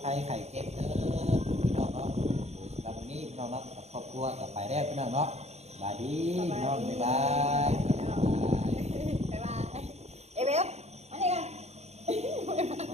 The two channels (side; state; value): left; late; 0.31 ms